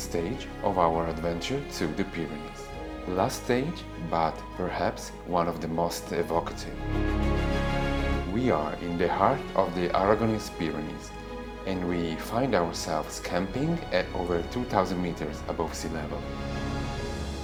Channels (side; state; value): both; identical; correlation 1.00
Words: of our adventure to the Pyrenees. Last stage, but perhaps one of the most evocative. We are in the heart of the Aragonese Pyrenees, and we find ourselves camping at over 2,000 meters above sea level.